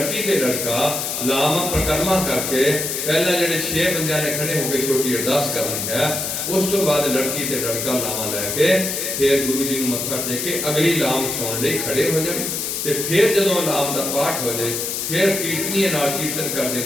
ਤੇ ਲੜਕਾ ਲਾਵਾਂ ਪ੍ਰਕਰਮਾ ਕਰਕੇ ਪਹਿਲਾਂ ਜਿਹੜੇ 6 ਬੰਦਿਆਂ ਨੇ ਖੜੇ ਹੋ ਕੇ ਛੋਟੀ ਅਰਦਾਸ ਕਰਨੀ ਹੈ, ਉਸ ਤੋਂ ਬਾਅਦ ਲੜਕੀ ਤੇ ਲੜਕਾ ਲਾਵਾਂ ਲੈ ਕੇ ਫਿਰ ਗੁਰੂ ਜੀ ਨੂੰ ਮੱਥਾ ਟੇਕ ਕੇ ਅਗਲੀ ਲਾਮ ਸੁਣਨ ਲਈ ਖੜੇ ਹੋ ਜਾਣ। ਤੇ ਫਿਰ ਜਦੋਂ ਲਾਮ ਦਾ ਪਾਠ ਹੋ ਜਾਏ, ਫਿਰ ਕੀਰਤਨੀਏ ਨਾਲ ਕੀਰਤਨ ਕਰਦੇ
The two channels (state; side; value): noise; left; hiss, 2 dB below the sound